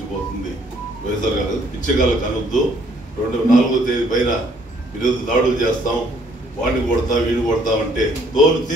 వైఎస్ఆర్ గారు పిచ్చగాళ్ళకు అనొద్దు. 4వ తేదీ పైన ఈరోజు దాడులు చేస్తాం, వాడిని కొడతాం, వీడిని కొడతామంటే తోలు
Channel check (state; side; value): normal; both; correlation 0.64